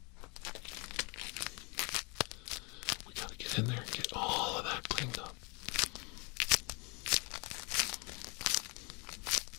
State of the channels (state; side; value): quieter; right; 31.1 dB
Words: We gotta get in there and get all of that cleaned up.